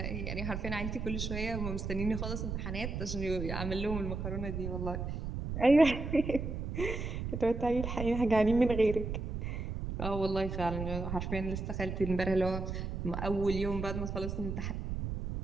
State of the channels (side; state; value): right; noise; rumble, 4 dB below the sound